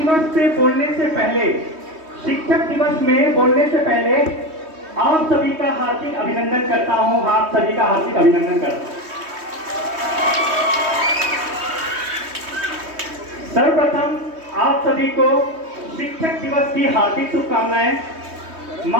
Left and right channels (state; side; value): late; left; 3.2 ms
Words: से बोलने से पहले, शिक्षक दिवस में बोलने से पहले आप सभी का हार्दिक अभिनंदन करता हूं। आप सभी का हार्दिक अभिनंदन करता हूं। सर्वप्रथम आप सभी को शिक्षक दिवस की हार्दिक शुभकामनाएं।